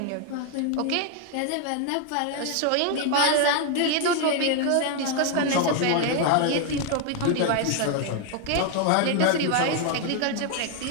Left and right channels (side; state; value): both; different; correlation 0.01